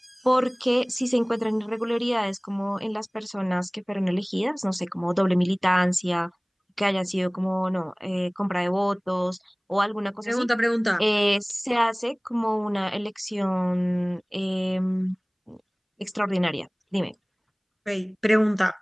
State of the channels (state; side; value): identical; both; correlation 1.00